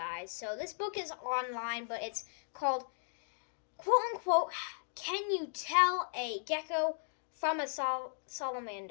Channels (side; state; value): right; silent; digital silence